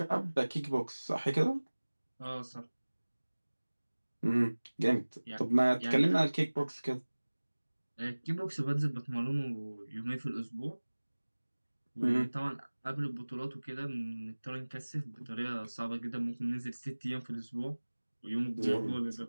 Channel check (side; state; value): both; inverted; correlation -1.00